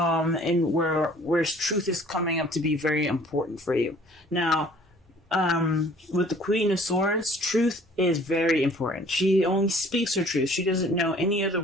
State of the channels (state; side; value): normal; both; correlation 0.53